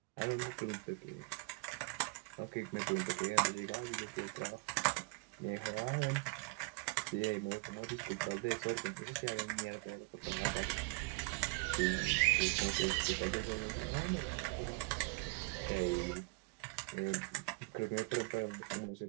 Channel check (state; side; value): quieter; left; 29.7 dB